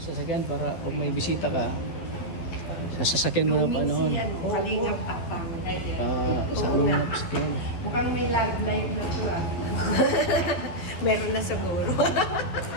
para pag may bisita ka, sa sasakyan mo na pa noon. Kalingap takpang. Sa amin na sasakyan. Mukhang may love life na to Meron na siguro.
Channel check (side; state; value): right; late; 12 ms